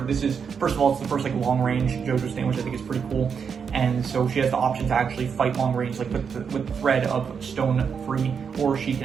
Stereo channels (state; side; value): quieter; left; 6.5 dB